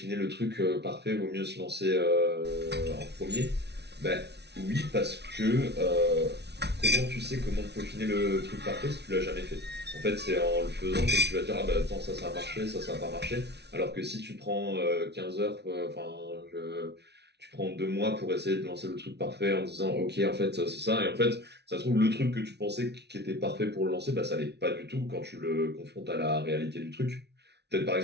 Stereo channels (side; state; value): left; late; 0.49 ms